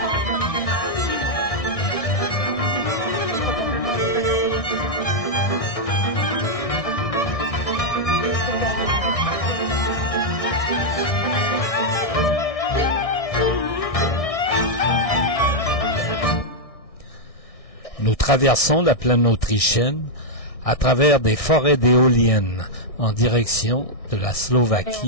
Nous traversons la plaine autrichienne à travers des forêts d'éoliennes en direction de la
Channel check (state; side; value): late; right; 1.6 ms